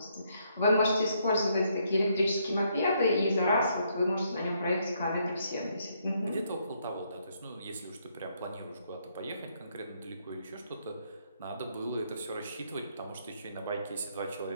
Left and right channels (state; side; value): inverted; both; correlation -0.73